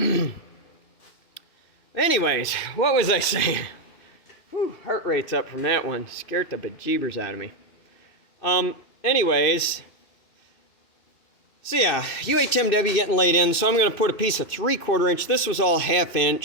Anyways, what was I saying? Whew, heart rate's up from that one. Scared the bejeebers out of me. Anyways, So yeah, UHMW getting laid in, so I'm going to put a piece of 3/4 inch. This was all 1/2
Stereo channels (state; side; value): late; right; 2.6 ms